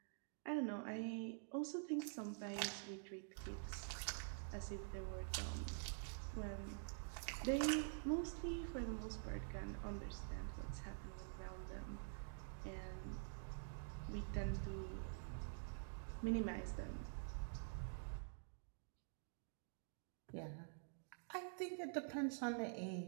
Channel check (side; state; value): left; silent; digital silence